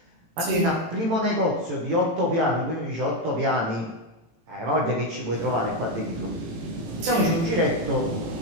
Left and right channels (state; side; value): late; left; 18 ms